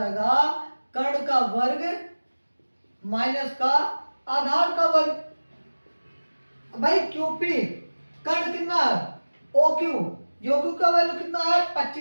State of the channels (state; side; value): inverted; both; correlation -1.00